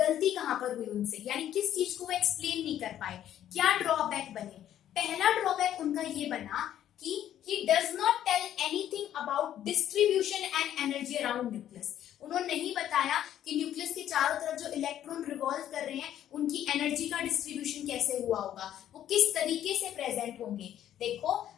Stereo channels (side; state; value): right; quieter; 11.2 dB